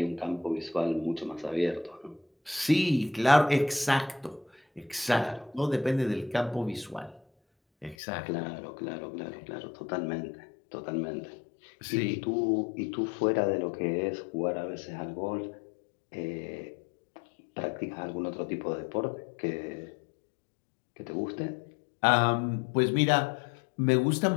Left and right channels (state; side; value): drops out; right; at 8.0 s